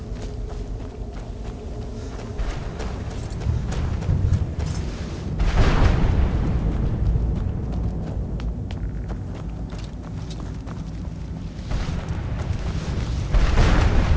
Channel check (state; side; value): identical; both; correlation 1.00